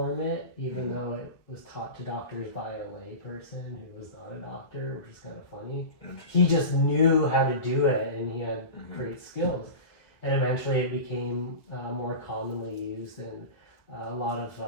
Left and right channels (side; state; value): right; late; 2.1 ms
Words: it, even though it was taught to doctors by a lay person who was not a doctor, which is kind of funny. He just knew how to do it, and he had great skills. And eventually it became more commonly used, and a lot of